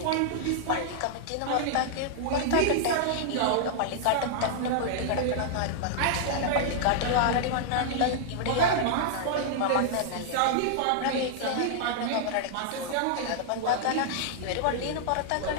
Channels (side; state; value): both; different; correlation -0.01